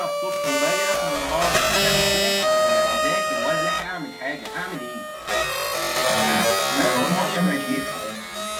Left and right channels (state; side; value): identical; both; correlation 1.00